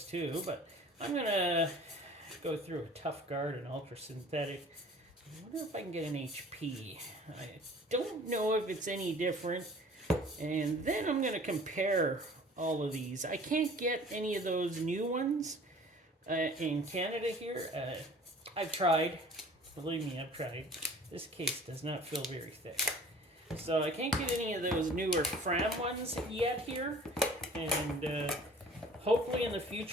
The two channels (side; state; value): both; normal; correlation 0.47